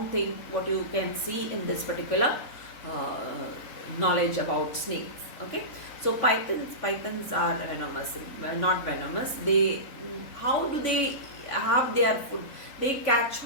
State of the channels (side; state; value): right; late; 3.9 ms